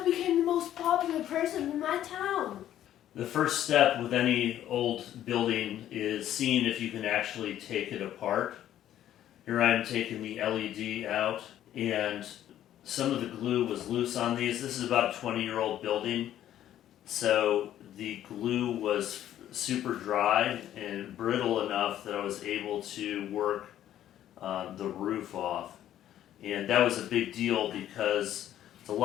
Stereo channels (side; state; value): right; quieter; 11.8 dB